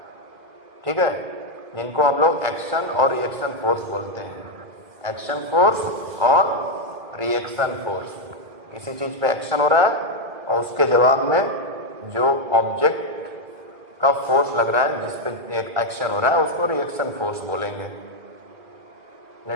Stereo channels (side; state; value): left; late; 2.0 ms